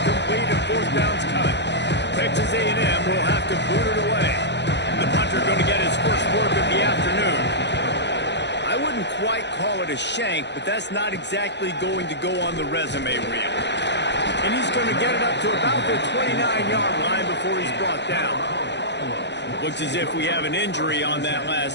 and 4th down's coming. Texas A&M will have to boot it away. The punter going to get his first work of the afternoon. I wouldn't quite call it a shank, but that's not exactly going to go on the resume reel. And he's going to get it up to about the 29-yard line before he's brought down. Looks as if we have an injury on that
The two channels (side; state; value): right; late; 0.51 ms